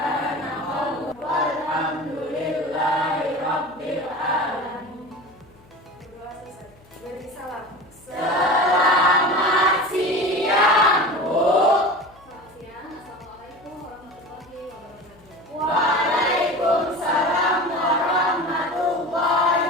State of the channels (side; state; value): left; noise; hum, 28 dB below the sound